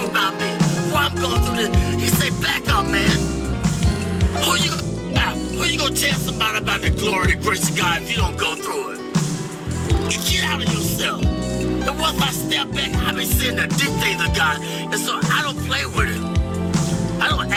about me. Why I'm going through this. He said, back up, man. Who you gonna tell somebody about the glory, the grace of God if you don't go through it? You get out of yourself. And once I step back, I've been seeing the deep things of God. And so I don't play with it. I don't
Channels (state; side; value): identical; both; correlation 1.00